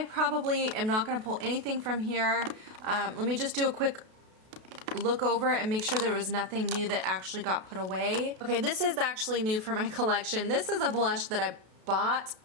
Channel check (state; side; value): late; left; 32 ms